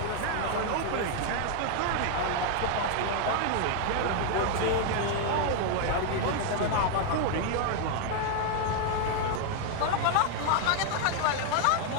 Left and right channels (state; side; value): different; both; correlation 0.00